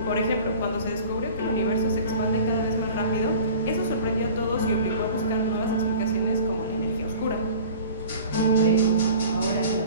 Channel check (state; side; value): inverted; both; correlation -0.42